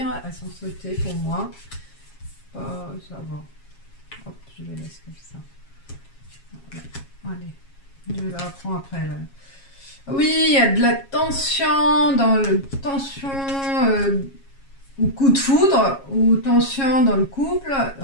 Elles sont sautées pour moi. Ça va. Hop, je les laisse comme ça. Allez, je la reprends après. Là. Oui, il y a de la tension dans le tension ou coup de foudre ou tension dans le couple.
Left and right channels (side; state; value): right; late; 7.3 ms